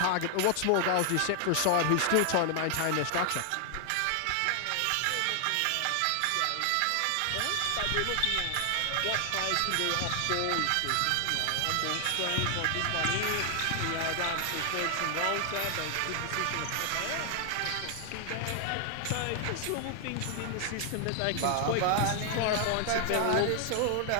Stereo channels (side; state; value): both; different; correlation 0.00